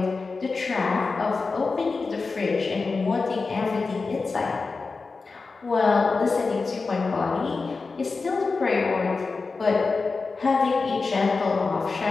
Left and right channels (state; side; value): quieter; right; 4.2 dB